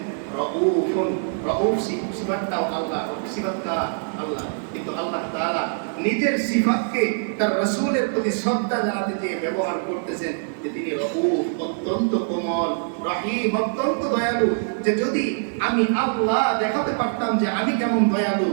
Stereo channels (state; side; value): silent; left; 63 dB below the other